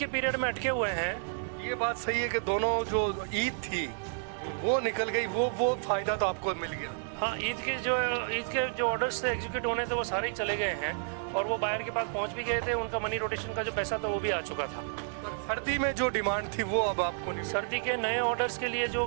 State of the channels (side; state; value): left; silent; digital silence